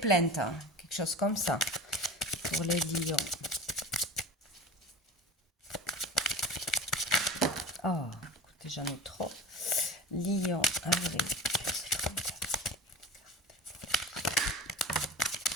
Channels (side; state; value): both; normal; correlation 0.34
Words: hein, quelque chose comme ça, pour les lions. Oh, écoutez, j'en ai trop. Lion, avril.